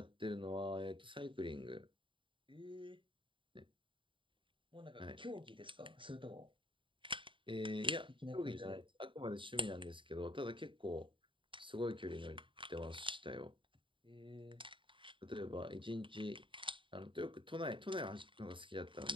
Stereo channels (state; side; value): late; left; 0.24 ms